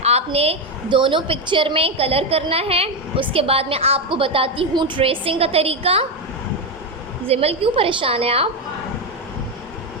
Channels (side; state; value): both; normal; correlation 0.09